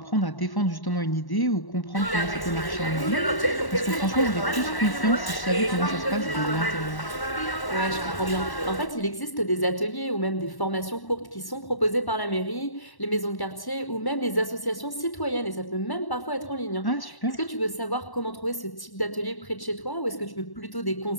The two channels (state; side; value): late; right; 1.1 ms